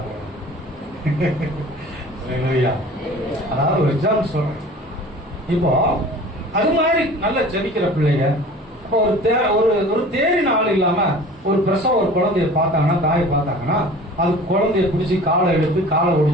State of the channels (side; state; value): both; normal; correlation 0.43